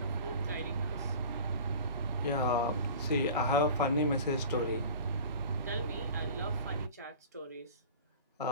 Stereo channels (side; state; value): both; inverted; correlation -0.40